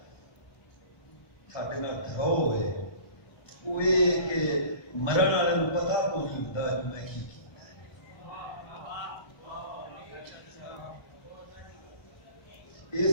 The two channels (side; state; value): right; late; 1.3 ms